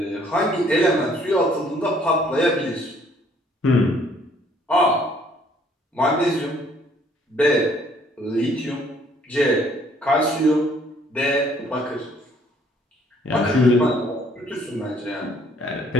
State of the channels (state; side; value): normal; both; correlation 0.62